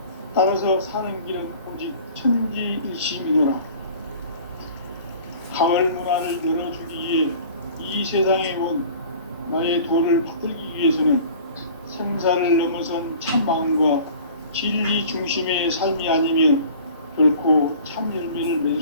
따라서 사는 길은 오직 천지일심이노라. 가을 문화를 열어주기 위해 이 세상에 온 나의 도를 받들기 위해서는 생사를 넘어선 참 마음과 진리 중심의 삶이 아니면 결코 참 열매를 맺을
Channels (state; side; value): inverted; both; correlation -0.46